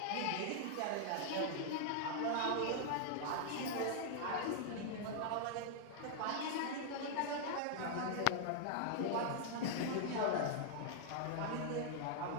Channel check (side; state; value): both; different; correlation -0.01